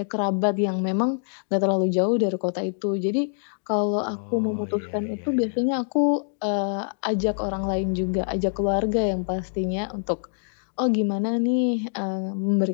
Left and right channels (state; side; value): silent; right; digital silence